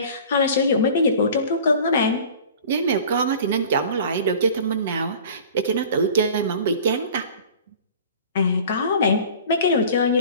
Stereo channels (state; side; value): inverted; both; correlation -0.43